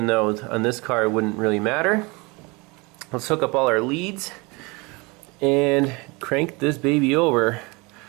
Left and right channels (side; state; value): left; quieter; 26.7 dB